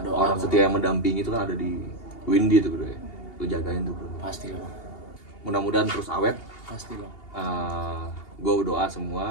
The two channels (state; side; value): late; right; 2.8 ms